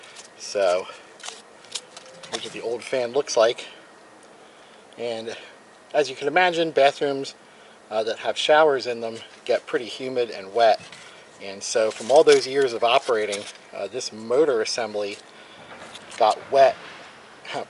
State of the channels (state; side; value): identical; both; correlation 1.00